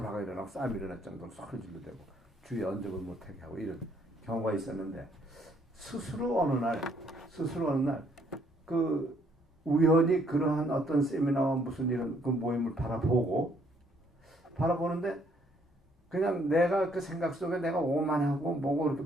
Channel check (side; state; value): both; normal; correlation 0.67